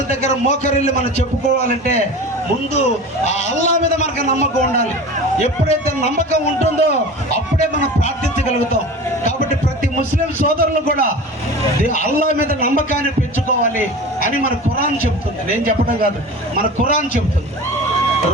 దగ్గర మోకరిల్లి మనం చెప్పుకోవాలంటే ముందు ఆ అల్లా మీద మనకు నమ్మకం ఉండాలి. ఎప్పుడైతే నమ్మకం ఉంటుందో అప్పుడే మనం ప్రార్థించగలుగుతాం. కాబట్టి ప్రతి ముస్లిం సోదరులు కూడా అల్లా మీద నమ్మకాన్ని పెంచుకోవాలి అని మన ఖురాన్ చెప్తుంది. నేను చెప్పడం కాదు, మన ఖురాన్ చెప్తుంది.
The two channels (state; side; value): normal; both; correlation 0.34